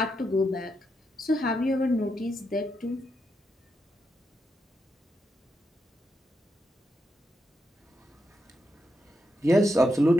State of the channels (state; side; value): normal; both; correlation 0.83